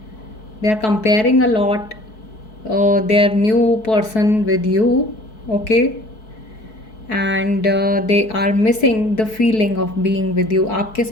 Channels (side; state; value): right; late; 4.6 ms